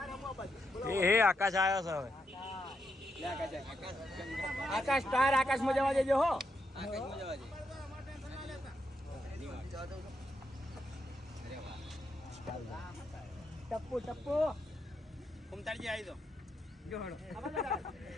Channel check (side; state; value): both; normal; correlation 0.82